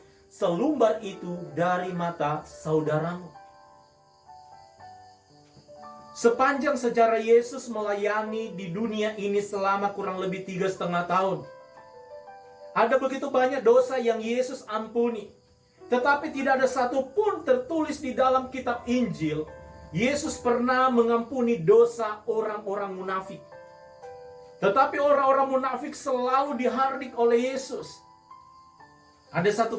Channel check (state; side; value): identical; both; correlation 1.00